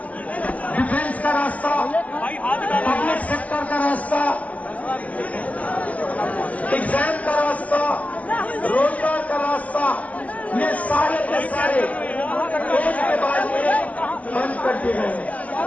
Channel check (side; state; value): right; late; 0.068 ms